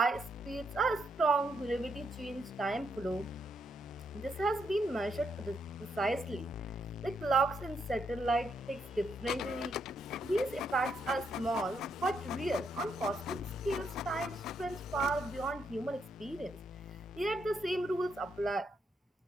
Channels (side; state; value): both; normal; correlation 0.78